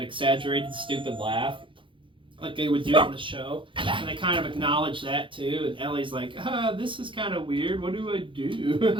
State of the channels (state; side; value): late; left; 0.25 ms